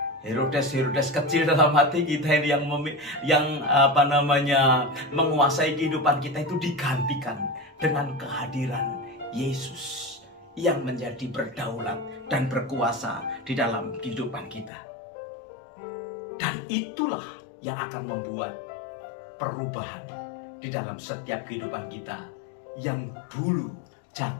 Herodes kecil dalam hati kita ini yang menguasai kehidupan kita itu digantikan dengan kehadiran Yesus yang menjadi berdaulat dan berkuasa di dalam kehidupan kita. Dan itulah yang akan membuat perubahan di dalam setiap kehidupan kita yang dulu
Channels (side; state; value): right; drops out; at 14.7 s